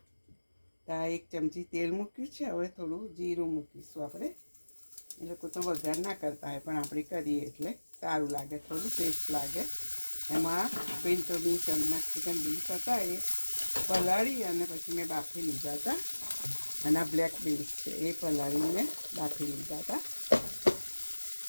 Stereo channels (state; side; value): inverted; both; correlation -1.00